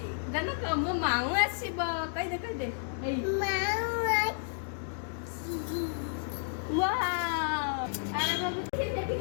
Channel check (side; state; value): right; silent; digital silence